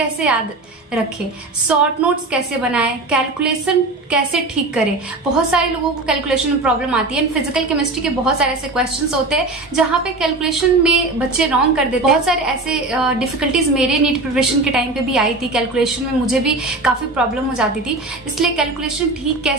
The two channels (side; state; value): left; quieter; 3.0 dB